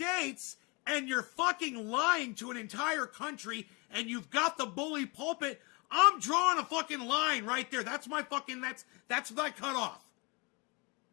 and you're fucking lying to an entire country and you've got the bully pulpit, I'm drawing a fucking line right there. That's my fucking, that's my cutoff.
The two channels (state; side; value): quieter; right; 29.3 dB